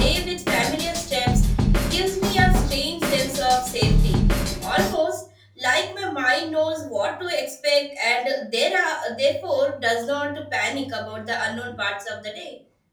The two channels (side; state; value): both; identical; correlation 1.00